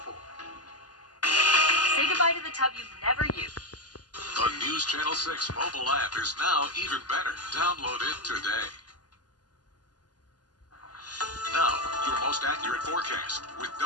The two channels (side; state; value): right; late; 0.69 ms